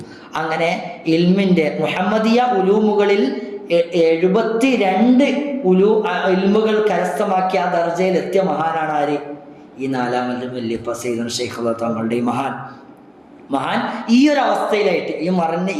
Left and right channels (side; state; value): both; identical; correlation 1.00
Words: അങ്ങനെ ഇൽമിന്റെ മുഹമ്മദിയ ഉലൂമുകളിൽ 72 ഇൽമുകൾ കരസ്ഥമാക്കിയ ആ ദർജയിൽ എത്തിയ മഹാനാണ് ആര്? ഈ നാലാമത്തെ വല്യപ്പ സയ്യിദുനാ ശൈഖ് റളിയല്ലാഹു തങ്ങളുടെ ഈ മഹാൻ ഈ ഒരു അവസ്ഥയിലായിട്ട്, ഈ മറഞ്ഞ